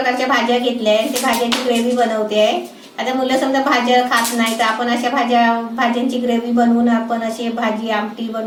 भाज्या घेतल्या आहे. ते भाज्यांची ग्रेव्ही बनवते आहे. आता मुलं समजा भाज्या खात नाही तर आपण अशा भाज्यांची ग्रेव्ही बनवून आपण अशी भाजी आमटी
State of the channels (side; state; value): both; identical; correlation 1.00